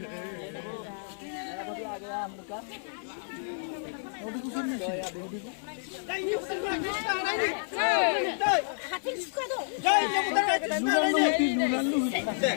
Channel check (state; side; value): silent; right; 58 dB below the other